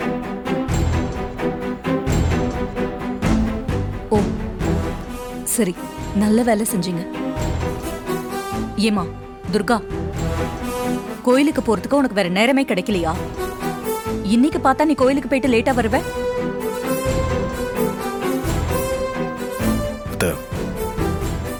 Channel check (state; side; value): identical; both; correlation 1.00